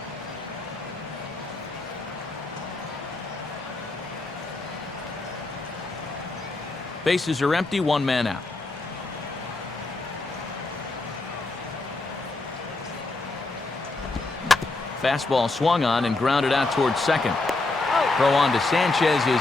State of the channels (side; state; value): right; quieter; 3.2 dB